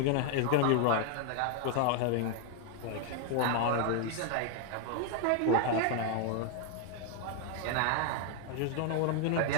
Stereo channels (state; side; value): different; both; correlation 0.00